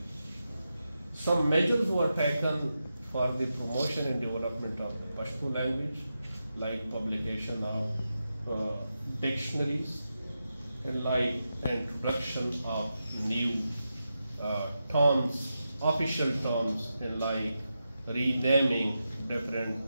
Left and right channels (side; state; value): both; inverted; correlation -0.89